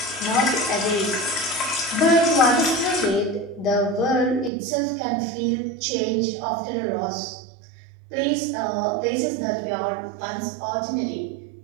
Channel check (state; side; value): drops out; left; at 4.5 s